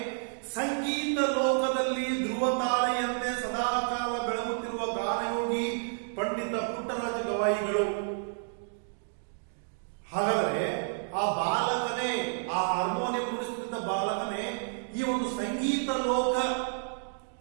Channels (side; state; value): left; silent; digital silence